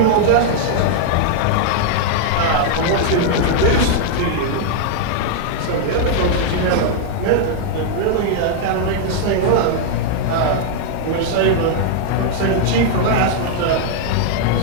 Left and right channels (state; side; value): different; both; correlation -0.01